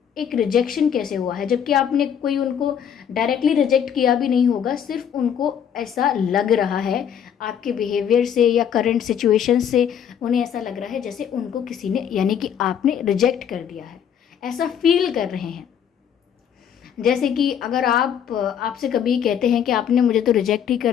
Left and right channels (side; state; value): right; quieter; 8.6 dB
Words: एक रिजेक्शन कैसे हुआ है, जबकि आपने कोई उनको डायरेक्टली रिजेक्ट किया भी नहीं होगा, सिर्फ उनको ऐसा लग रहा है आपके बिहेवियर से या करंट सिचुएशन से, उन्हें ऐसा लग रहा है जैसे उनको किसी ने, यानी कि आपने रिजेक्ट कर दिया है, ऐसा फील कर रहे हैं। जैसे कि अगर आपसे कभी कहते हैं कि आपने मुझे तो रिजेक्ट ही